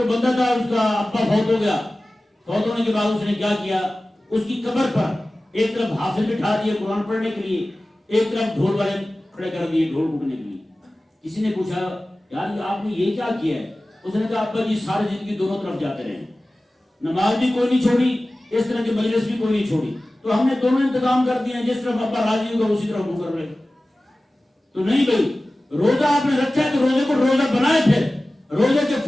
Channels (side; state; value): both; normal; correlation 0.97